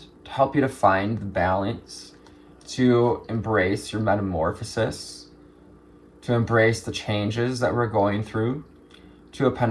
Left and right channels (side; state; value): both; identical; correlation 1.00